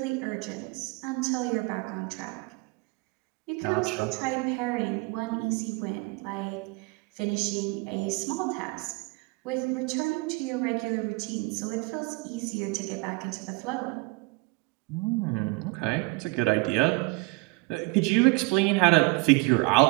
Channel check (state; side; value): quieter; left; 25.8 dB